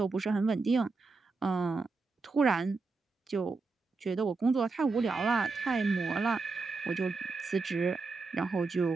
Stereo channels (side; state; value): left; quieter; 4.0 dB